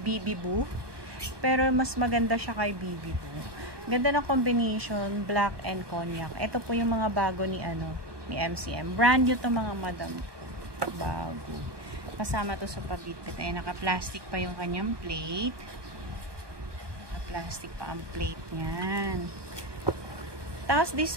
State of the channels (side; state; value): left; late; 1.2 ms